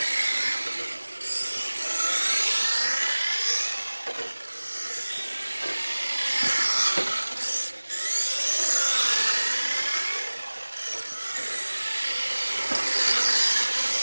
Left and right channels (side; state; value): both; inverted; correlation -1.00